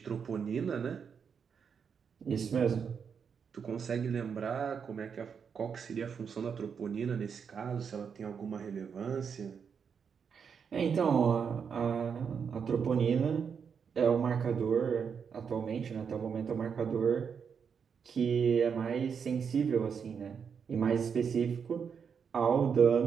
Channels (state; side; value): quieter; left; 6.7 dB